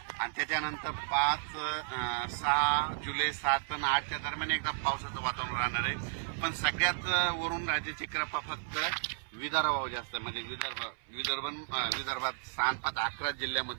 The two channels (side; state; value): left; silent; 55 dB below the other